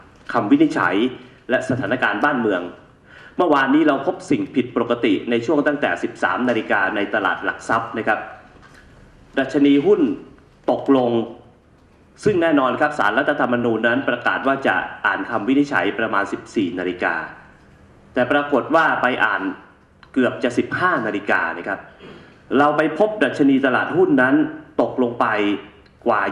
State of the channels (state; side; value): identical; both; correlation 1.00